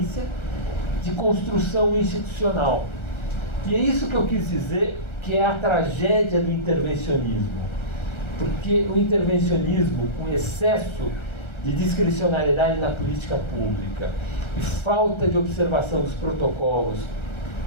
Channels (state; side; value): late; right; 1.3 ms